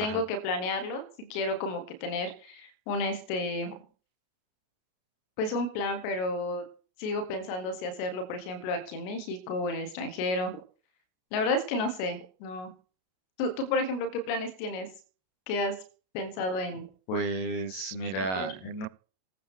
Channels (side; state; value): right; late; 33 ms